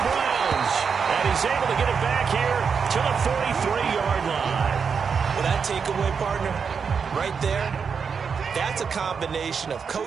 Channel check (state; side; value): quieter; left; 6.1 dB